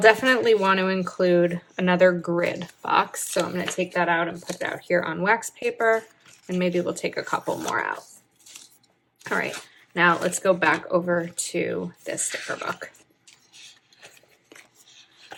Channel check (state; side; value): identical; both; correlation 1.00